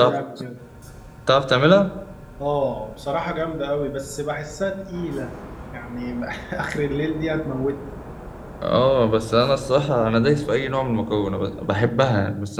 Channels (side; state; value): both; identical; correlation 1.00